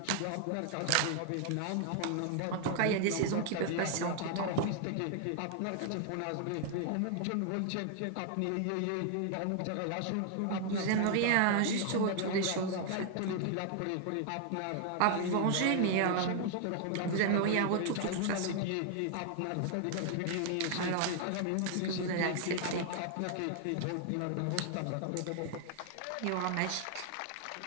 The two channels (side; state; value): both; different; correlation 0.00